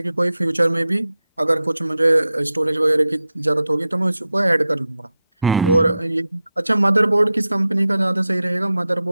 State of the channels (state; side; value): inverted; both; correlation -0.89